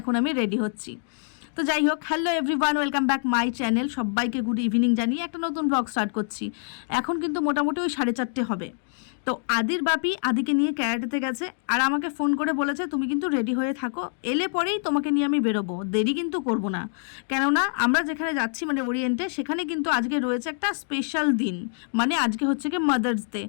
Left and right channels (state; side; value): silent; right; digital silence